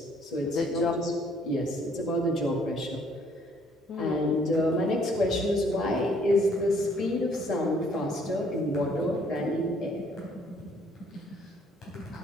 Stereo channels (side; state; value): both; normal; correlation 0.63